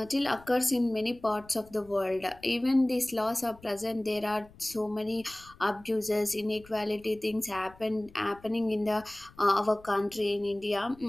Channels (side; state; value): left; noise; rumble, 24 dB below the sound